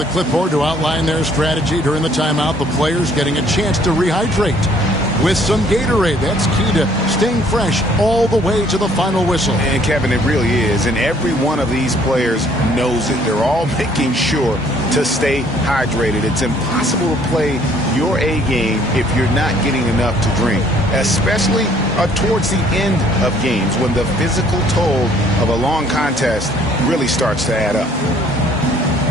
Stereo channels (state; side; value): normal; both; correlation 0.61